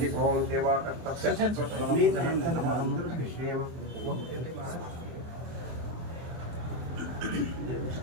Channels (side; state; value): left; late; 24 ms